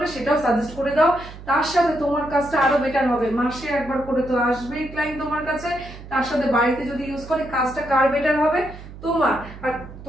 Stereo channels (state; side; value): noise; right; hum, 15 dB below the sound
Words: সেটাও সাজেস্ট করে দাও। তার সাথে তোমার কাজটা আরো বেটার হবে, মাসে একবার করে তো আসবেই ক্লায়েন্ট তোমার কাছে, তার সাথে বাড়িতে যদি ইউজ করে কাজটা কার বেটার হবে? তোমার। আর